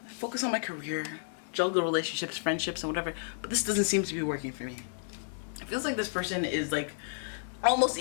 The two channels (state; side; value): silent; right; digital silence